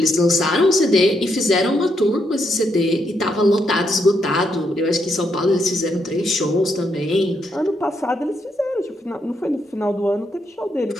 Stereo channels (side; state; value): both; normal; correlation 0.78